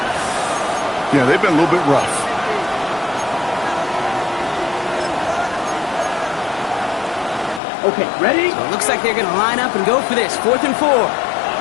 yeah, they've been a little bit rough. Okay, ready. So it looks like they're going to line up and go for this. 4th and 4.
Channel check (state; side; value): drops out; right; at 7.6 s